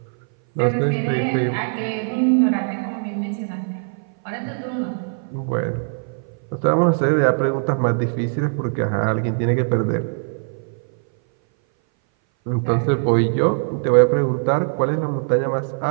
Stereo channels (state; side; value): silent; left; 59 dB below the other